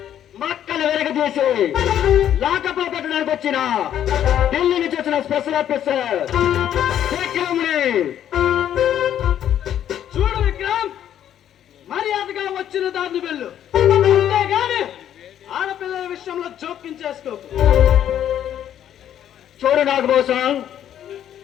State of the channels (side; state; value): right; quieter; 10.5 dB